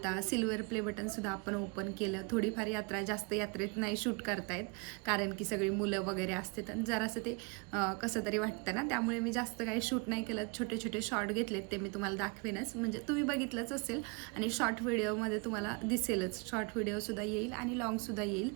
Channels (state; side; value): quieter; left; 31.1 dB